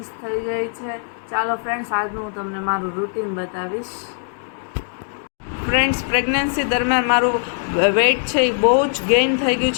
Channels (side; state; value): right; silent; digital silence